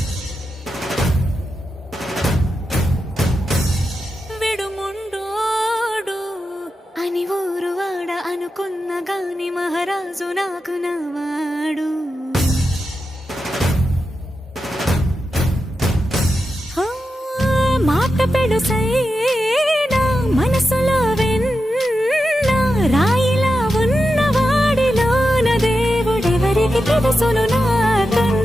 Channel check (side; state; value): both; normal; correlation 0.89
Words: విడు ముండోడు అని ఊరు వాడ అనుకున్న గాని మహారాజు నాకు నవాడు. మాట పెడుసైనా మనసులో వెన్న రాయిలా ఉన్నవాడిలోన దేవుడెవరికి తెలుసును